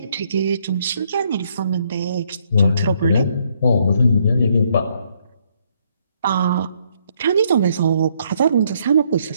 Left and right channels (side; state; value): both; inverted; correlation -0.70